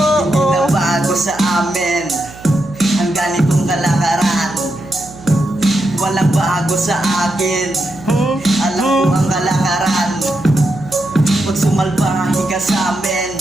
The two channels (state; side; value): noise; right; hum, 19 dB below the sound